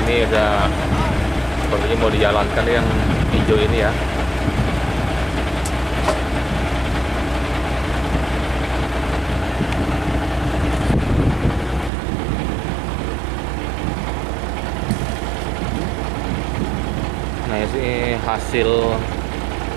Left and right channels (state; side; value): drops out; left; at 11.9 s